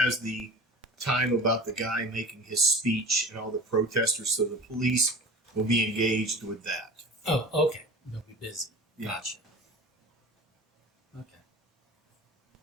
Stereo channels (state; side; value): normal; both; correlation 0.38